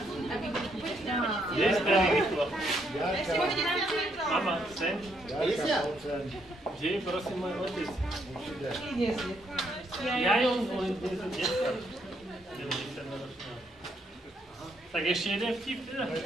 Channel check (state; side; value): normal; both; correlation 0.73